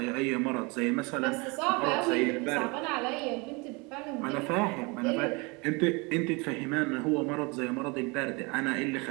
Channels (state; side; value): quieter; left; 28.2 dB